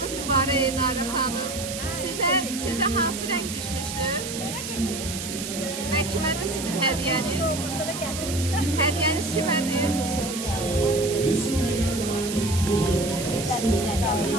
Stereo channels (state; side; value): noise; right; hiss, 7 dB below the sound